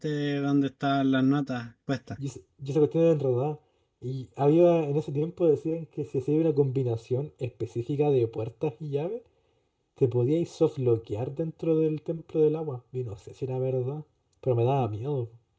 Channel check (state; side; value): identical; both; correlation 1.00